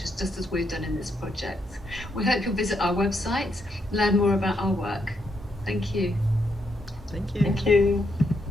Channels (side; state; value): both; normal; correlation 0.78